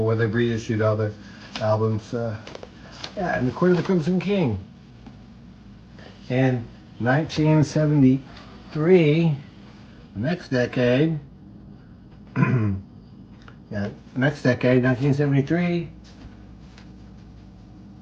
where they've reissued all their albums. Yeah, and the Court of the Crimson King. In 1973, the next decade, 1973,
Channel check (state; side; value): identical; both; correlation 1.00